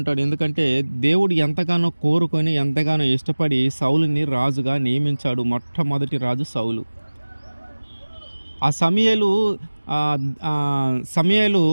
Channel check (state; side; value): inverted; both; correlation -1.00